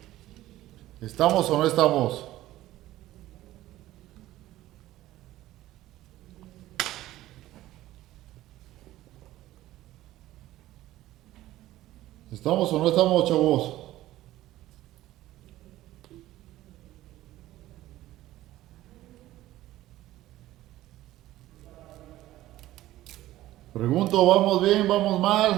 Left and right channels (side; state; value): left; quieter; 15.3 dB